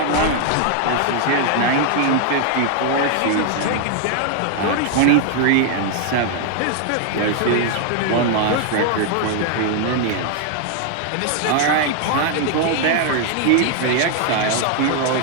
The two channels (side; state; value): both; different; correlation 0.00